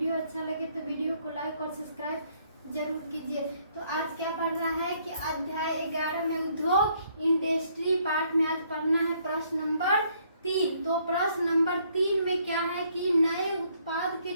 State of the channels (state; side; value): inverted; both; correlation -0.68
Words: अच्छा लगे तो वीडियो को लाइक और सब्सक्राइब जरूर कीजिए। तो आज क्या पढ़ना है कि अध्याय 11 में उद्योग इंडस्ट्री पार्ट में आज पढ़ना है प्रश्न नंबर 3। तो प्रश्न नंबर 3 में क्या है कि नए उत्पाद के